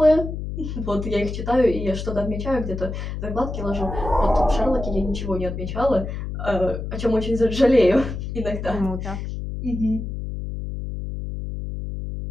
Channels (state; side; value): noise; left; hum, 6 dB below the sound